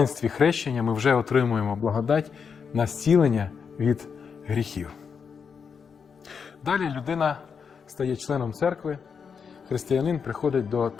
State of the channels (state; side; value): quieter; right; 6.3 dB